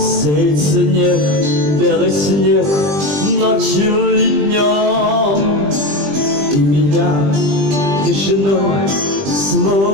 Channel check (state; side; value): late; left; 20 ms